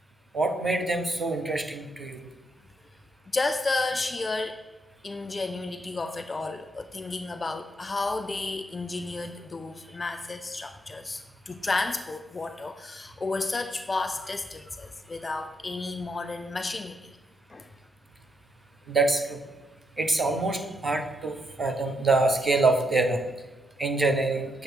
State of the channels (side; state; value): both; normal; correlation 0.78